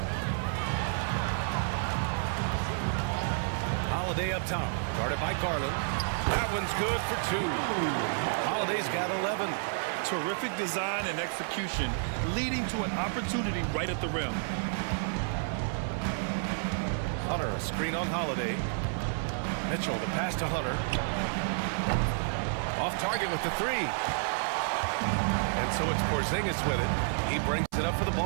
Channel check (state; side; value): silent; left; 57 dB below the other